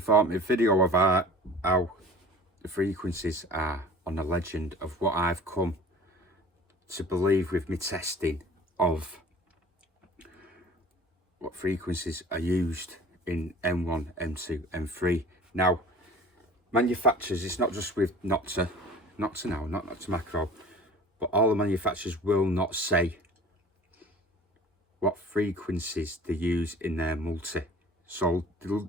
video of how the frequencies are on the Legend, of what I've come to believe with my testing of what frequencies are used in M1, M2, M3. Now, manufacturers, it's not just with Nokta now, not Nokta Macro, but all the manufacturers will not say what frequencies they use in their multi. So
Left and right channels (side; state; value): both; normal; correlation 0.43